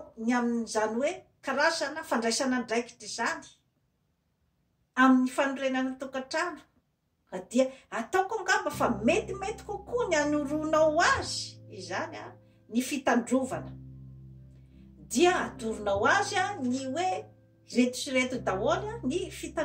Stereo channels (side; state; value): both; identical; correlation 1.00